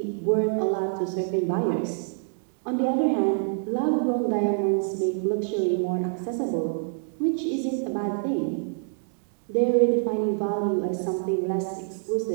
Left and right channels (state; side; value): silent; left; digital silence